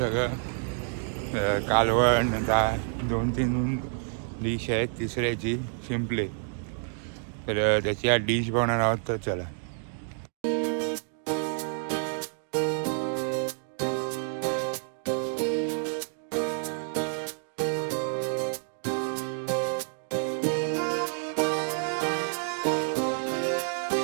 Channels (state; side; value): silent; left; 59 dB below the other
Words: कालवण 2-3 डिश आहेत तिसऱ्याची सिम्पली। तर त्याची आज डिश बनवणार आहोत। तर चला